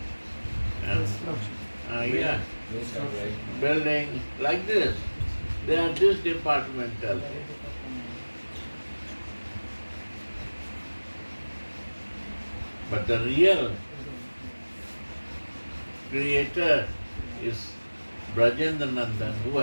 yeah, building like this. They are this departmental. But the real creator is Brajendra Nandan, who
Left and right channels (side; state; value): both; inverted; correlation -1.00